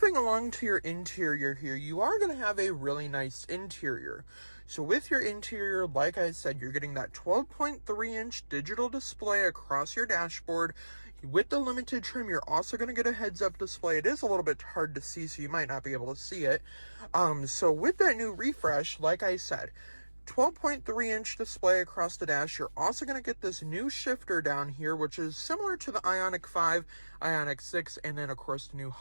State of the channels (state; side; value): inverted; both; correlation -1.00